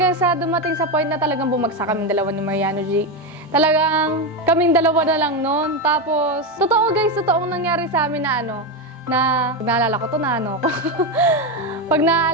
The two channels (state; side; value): normal; both; correlation 0.11